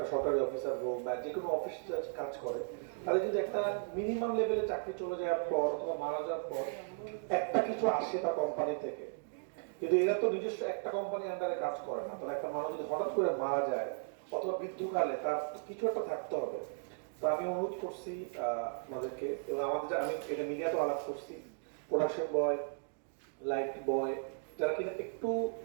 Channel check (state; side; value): silent; left; digital silence